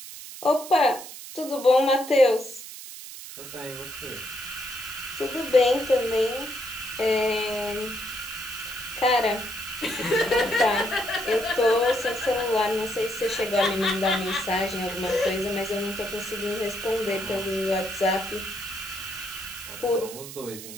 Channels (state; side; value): noise; right; hiss, 12 dB below the sound